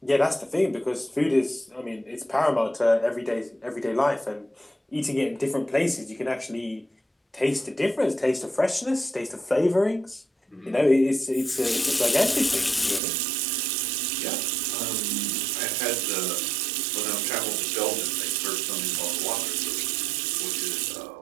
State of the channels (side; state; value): left; drops out; at 13.0 s